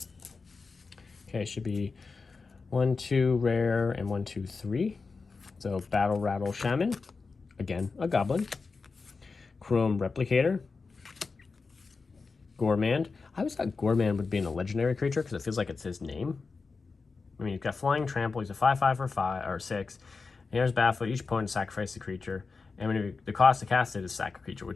Okay, should be 1, 2 rare and 1, 2, 3. So Battle Rattle Shaman, again a goblin. Chrome Replicator. Gormand. I always thought Gormand would be a legendary creature because it feels like it's his name. I mean, you've got Flying Trample. He's a 5/5 for 5 or 6. And here's Battlefield. Each opponent sacrifices a creature, and when the cost to cast it is sack a creature,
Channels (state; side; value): quieter; right; 4.4 dB